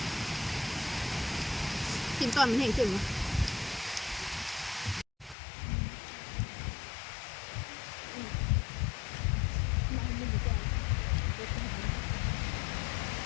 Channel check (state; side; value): drops out; right; at 5.4 s